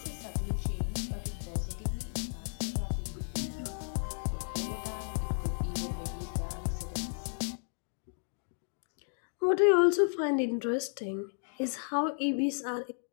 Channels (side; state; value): right; silent; 55 dB below the other